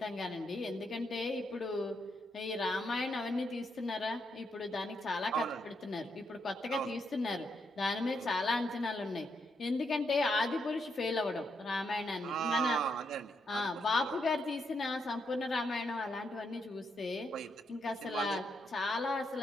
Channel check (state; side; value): normal; both; correlation 0.79